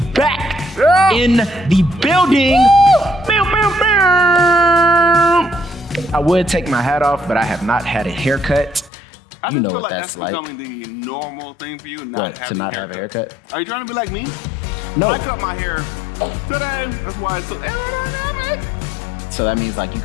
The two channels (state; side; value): drops out; right; at 8.9 s